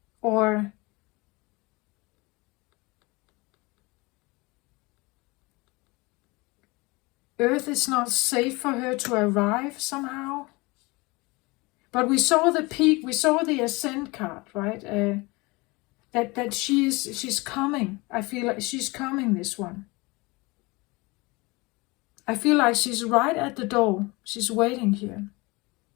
or Earth is not safe for her to arrive somehow. But we saw the peak, we saw the ascent card, right? That she's coming. I feel like she's coming, this one. I feel like she's right at the door. She's waiting here.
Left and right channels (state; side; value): quieter; right; 24.6 dB